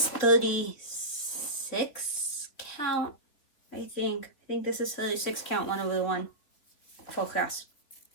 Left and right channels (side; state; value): right; late; 3.6 ms